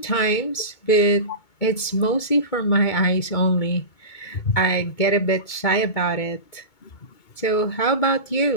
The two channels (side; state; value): right; late; 2.2 ms